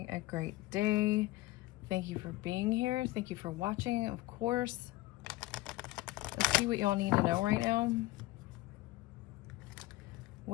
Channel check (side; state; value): right; quieter; 19.0 dB